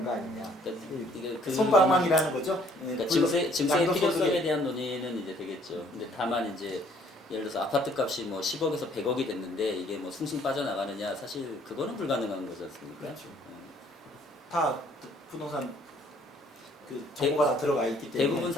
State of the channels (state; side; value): normal; both; correlation 0.61